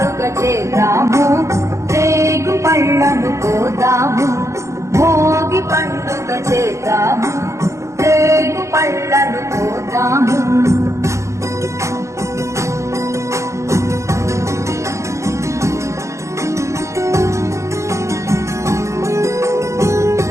చేద్దాము, రేగు పళ్ళను పోదాము. భోగి పండుగ చేద్దాము, రేగు పళ్ళను పోదాము.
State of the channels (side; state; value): left; late; 0.14 ms